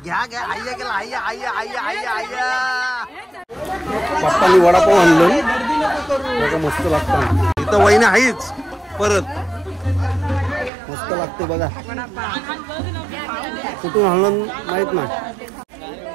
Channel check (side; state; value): left; drops out; at 10.7 s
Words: घ्या आय्या केला आय्या पप्पानी वडापाव आणलं मस्त लागतं. इथं वहिनी आहेच परत मस्त लागते बघा. कुठून आणलं माहित नाही.